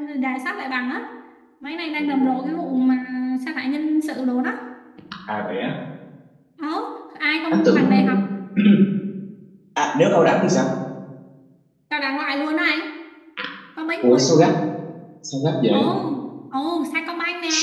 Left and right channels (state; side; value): identical; both; correlation 1.00